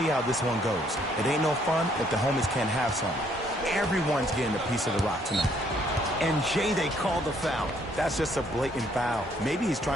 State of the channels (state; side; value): normal; both; correlation 0.67